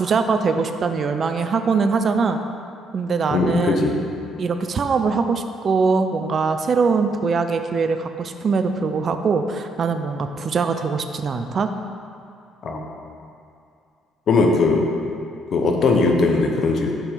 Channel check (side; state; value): both; normal; correlation 0.72